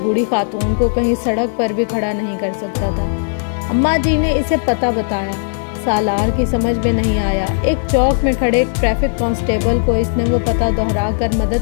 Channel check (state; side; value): silent; right; digital silence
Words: بوڑھی خاتون کو کہیں سڑک پر بھی کھڑا نہیں کر سکتا تھا۔ اماں جی نے اسے پتہ بتایا۔ سالار کی سمجھ میں نہیں آیا۔ ایک چوک میں کھڑے ٹریفک کانسٹیبل کو اس نے وہ پتہ دہرا کر